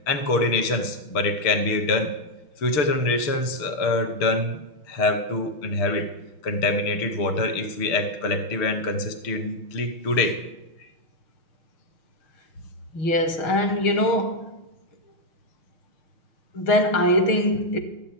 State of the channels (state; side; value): late; right; 6.6 ms